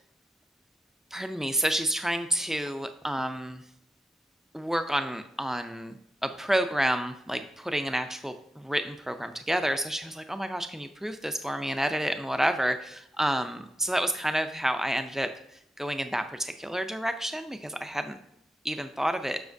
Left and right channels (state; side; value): normal; both; correlation 0.87